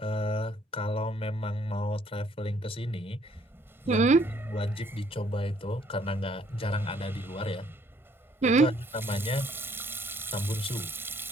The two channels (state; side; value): normal; both; correlation 0.64